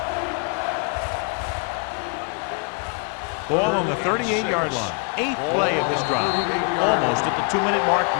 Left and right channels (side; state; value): right; quieter; 36.5 dB